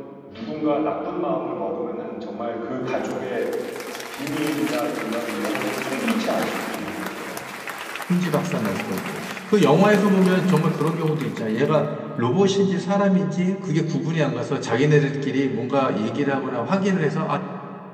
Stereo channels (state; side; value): identical; both; correlation 1.00